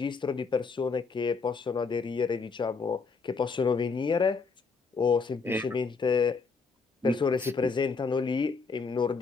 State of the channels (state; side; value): quieter; right; 4.7 dB